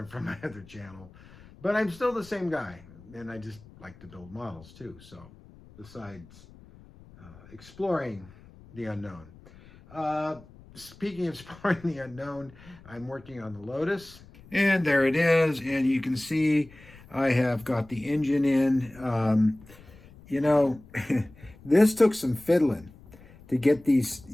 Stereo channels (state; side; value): noise; left; rumble, 22 dB below the sound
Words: from my other channel, but I'm still the same guy, and I just like to build models too. So besides exploring the unknown. Speaking of exploring the unknown, I'm working on the Lotus. And there it is, and you can see I have got the engine in. This took some fiddling to get these.